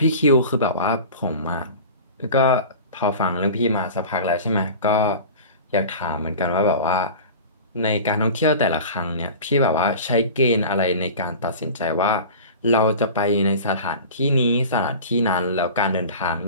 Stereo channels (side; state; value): both; inverted; correlation -0.36